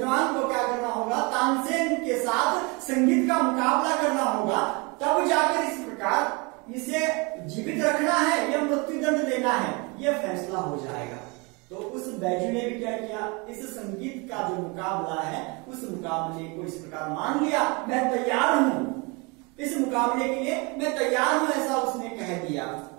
को क्या करना होगा? तानसेन के साथ संगीत का मुकाबला करना होगा। तब जाकर इस प्रकार इसे जीवित रखना है या मृत्युदंड देना है, यह फैसला हो जाएगा। तो उस बैजू ने भी क्या किया? इस संगीत का जो मुकाबला है, उस मुकाबले को इस प्रकार मान लिया, मैं तैयार हूं, इस मुकाबले के लिए मैं तैयार हूं, ऐसा उसने कह दिया।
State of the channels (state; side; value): quieter; left; 29.1 dB